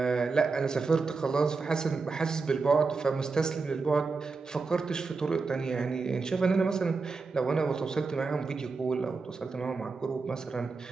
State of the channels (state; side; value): quieter; left; 4.3 dB